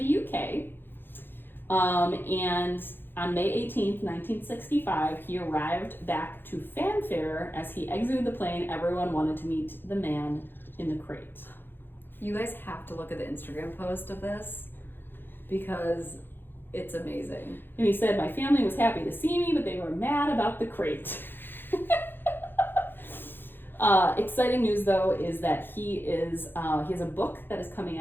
UK. And on May 18th, 1965, he arrived back to fanfare. As he exited the plane, everyone wanted to meet the man in the crate. You guys have to look at the Instagram post of this because It's amazing. And he said, my family was happy to see me, but they were mad about the crate. Exciting news, though, is that he has a book that is coming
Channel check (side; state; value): right; late; 0.10 ms